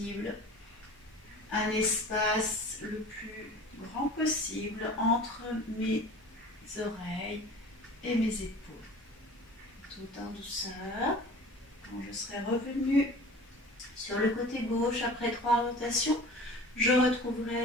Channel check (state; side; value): normal; both; correlation 0.41